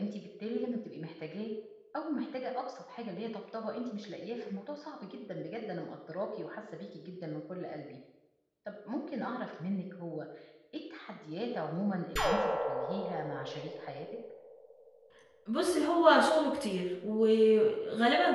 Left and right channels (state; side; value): identical; both; correlation 1.00